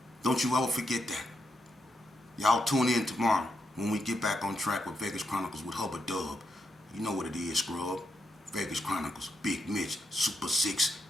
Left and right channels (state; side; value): normal; both; correlation 0.82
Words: Don't you ever forget that. Y'all tune in tomorrow when we get back on track with Vegas Chronicles with Hubba Dub. You know what it is, scrub. Vegas Chronicles, Big Mitch, Super 6,